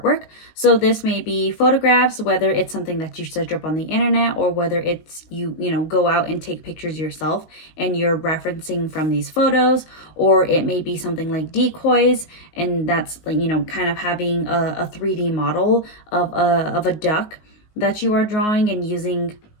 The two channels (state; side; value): late; right; 19 ms